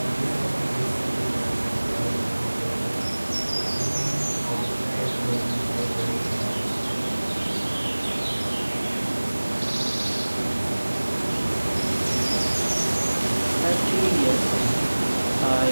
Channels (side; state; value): both; inverted; correlation -1.00